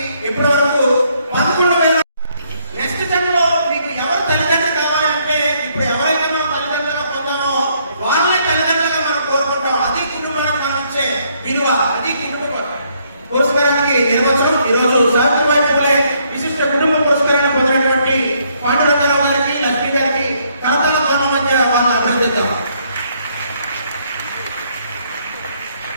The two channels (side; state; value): both; inverted; correlation -0.70